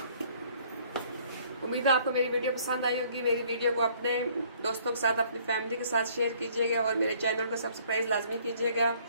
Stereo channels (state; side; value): inverted; both; correlation -0.60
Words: उम्मीद है आपको मेरी वीडियो पसंद आई होगी। मेरी वीडियो को अपने दोस्तों के साथ, अपनी फैमिली के साथ शेयर कीजिएगा और मेरे चैनल को सब्सक्राइब लाजमी कीजिएगा।